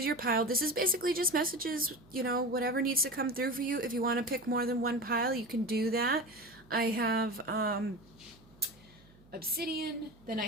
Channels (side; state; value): right; noise; hum, 27 dB below the sound